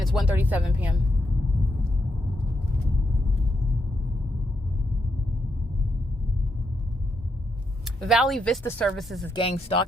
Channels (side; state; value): both; normal; correlation 0.81